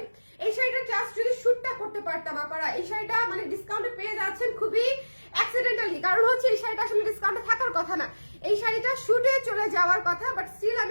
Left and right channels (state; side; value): inverted; both; correlation -1.00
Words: এই শাড়িটা জাস্ট যদি শুটটা করতে পারতাম আপনারা, এই শাড়িটা মানে ডিসকাউন্টে পেয়ে যাচ্ছেন খুবই অ্যাক্সিডেন্টালি, কারণ হচ্ছে এই শাড়িটা আসলে ডিসকাউন্টে থাকার কথা না, এই শাড়িটা শুটে চলে যাওয়ার কথা, বাট স্টিল